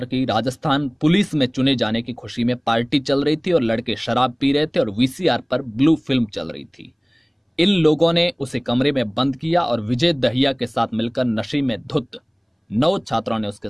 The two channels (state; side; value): identical; both; correlation 1.00